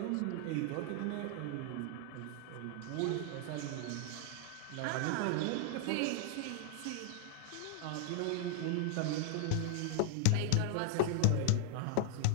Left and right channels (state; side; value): different; both; correlation 0.00